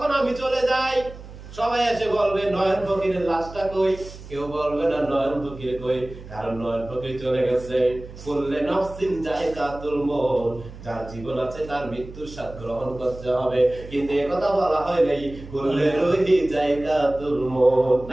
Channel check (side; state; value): right; noise; hum, 15 dB below the sound